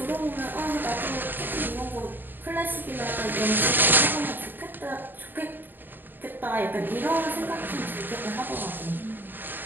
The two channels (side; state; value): left; late; 0.093 ms